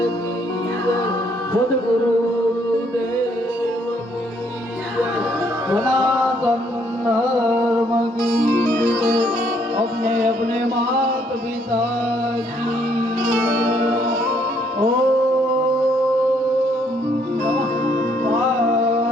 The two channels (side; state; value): both; normal; correlation 0.68